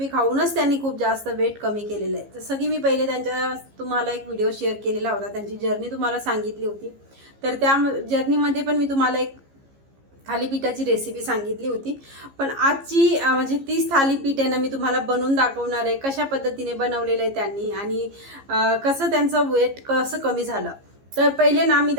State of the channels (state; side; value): late; left; 15 ms